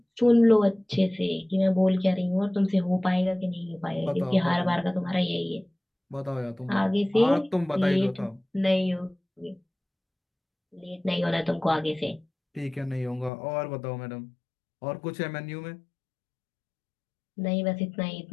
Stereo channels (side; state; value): right; drops out; at 13.3 s